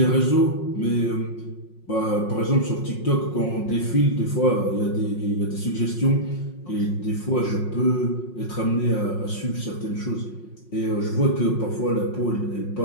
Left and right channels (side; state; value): right; late; 5.5 ms